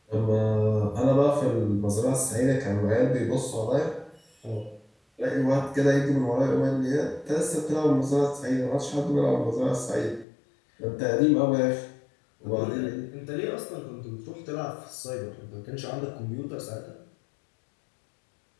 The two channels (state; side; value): drops out; right; at 10.2 s